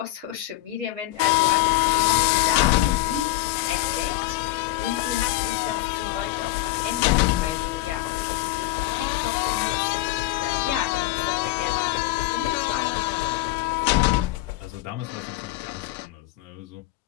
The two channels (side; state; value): right; quieter; 17.3 dB